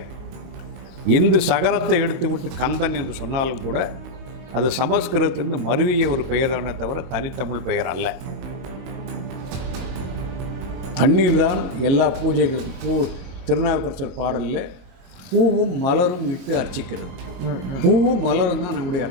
இந்து சகரத்தை எடுத்துவிட்டு கந்தன் என்று சொன்னாலும் கூட அது சமஸ்கிருதத்திலிருந்து மருவிய ஒரு பெயர்தானே தவிர தனித்தமிழ் பெயர் அல்ல. தண்ணீர் தான் எல்லா பூஜைகளுக்கும் திருநாவுக்கரசர் பாடலில் பூவும் மலரும் இட்டு அர்ச்சிக்கிறது. பூவும் மலரும் தான் நம்முடைய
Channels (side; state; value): left; late; 22 ms